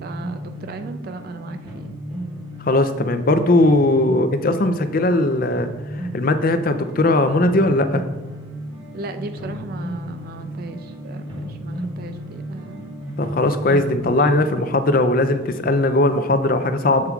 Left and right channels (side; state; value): both; normal; correlation 0.40